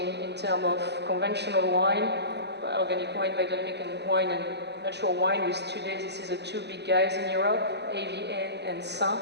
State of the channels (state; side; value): late; left; 0.50 ms